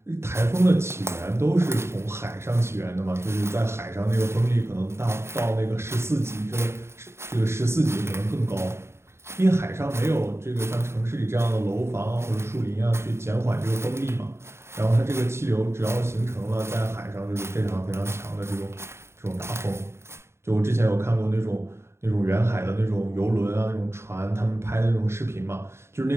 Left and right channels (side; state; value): left; late; 0.13 ms